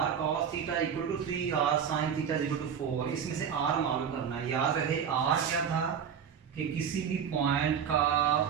cos theta equal to 3, r sin theta equal to 4। इसमें से r मालूम करना है। याद रहे r क्या था कि किसी भी पॉइंट का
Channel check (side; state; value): left; quieter; 7.7 dB